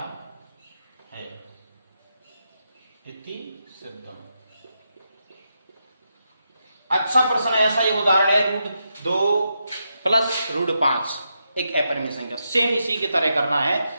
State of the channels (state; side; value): inverted; both; correlation -0.84